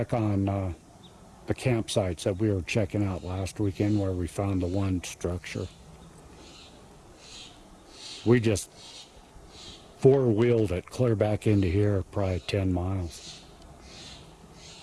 on the campsites that we were checking out last weekend where we found the one structure. We just four-wheeled it clear back into here, probably 10 miles.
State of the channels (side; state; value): both; identical; correlation 1.00